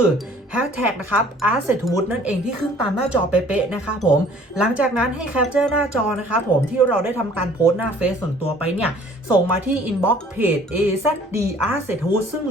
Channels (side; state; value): both; normal; correlation 0.54